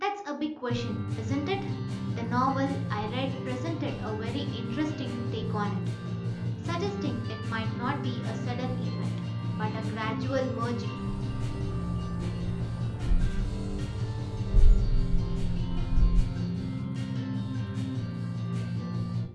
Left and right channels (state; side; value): identical; both; correlation 1.00